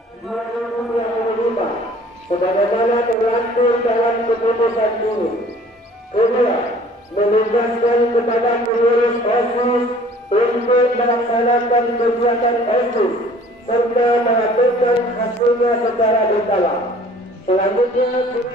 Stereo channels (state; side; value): normal; both; correlation 0.52